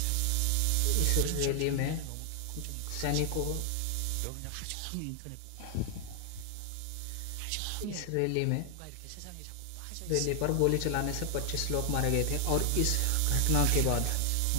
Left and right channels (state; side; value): different; both; correlation 0.00